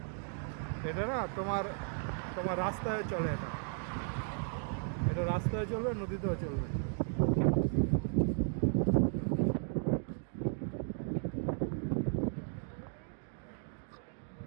এটা না তোমার তোমার রাস্তায় চলে। এটা রাস্তায় চলবে, নদীতেও চলবে।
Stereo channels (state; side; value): silent; left; 54 dB below the other